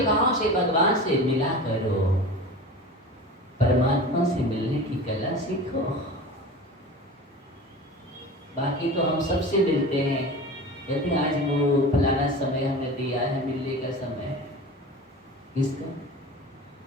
भाव से भगवान से मिला करो, परमात्मा से मिलने की कला सीखो। बाकी तो हम सबसे मिलते हैं, यदि आज वो फलाना समय हमें दिया है, मिलने का समय, किसका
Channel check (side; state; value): both; normal; correlation 0.34